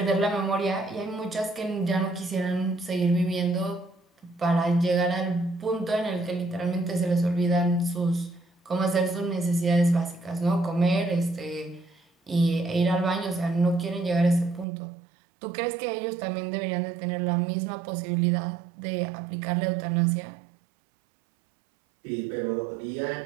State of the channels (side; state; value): left; drops out; at 14.7 s